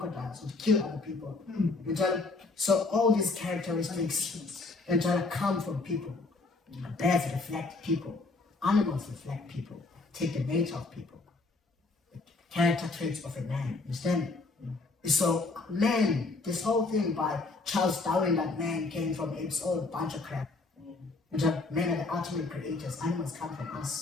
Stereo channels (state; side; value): quieter; right; 3.6 dB